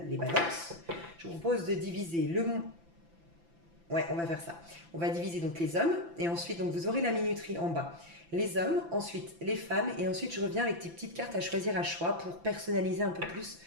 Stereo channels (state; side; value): late; left; 5.9 ms